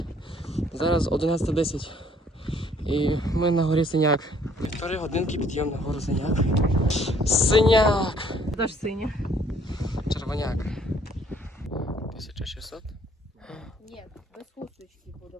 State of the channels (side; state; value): both; normal; correlation 0.62